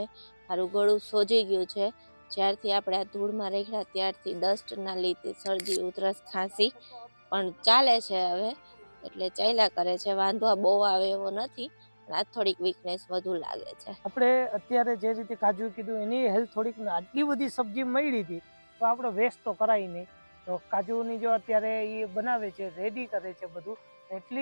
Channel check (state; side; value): inverted; both; correlation -1.00